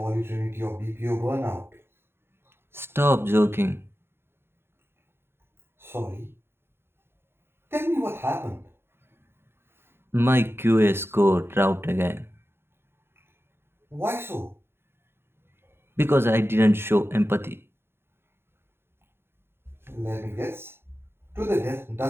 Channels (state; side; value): late; left; 0.11 ms